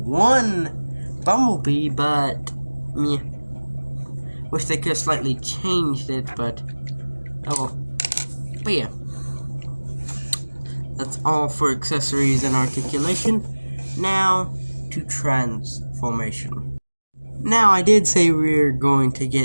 Bumblebee, but yeah, wish they could have slightly changed it, but oh well. But yeah. That's all for accessories and articulation. Now to transformation. Now I did say we're going to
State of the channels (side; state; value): both; inverted; correlation -1.00